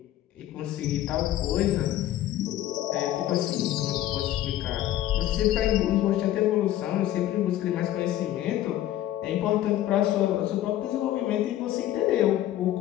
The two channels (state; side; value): quieter; right; 13.2 dB